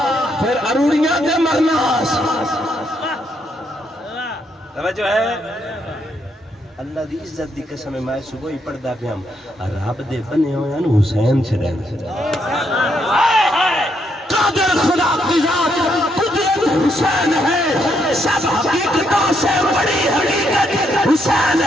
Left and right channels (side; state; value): both; normal; correlation 0.76